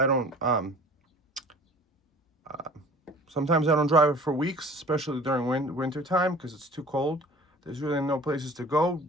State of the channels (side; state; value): both; normal; correlation 0.46